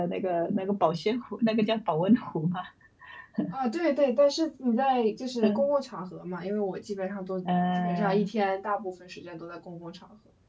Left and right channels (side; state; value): both; identical; correlation 1.00